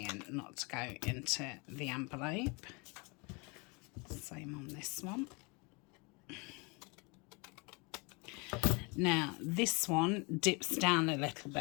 not to go into the envelope. Same on this one. Now this one dips down a little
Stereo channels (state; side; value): quieter; right; 29.7 dB